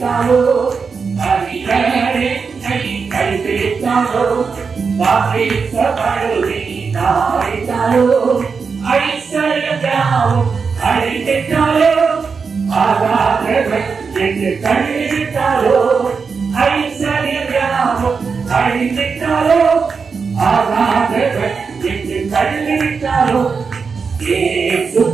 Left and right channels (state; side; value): quieter; left; 5.3 dB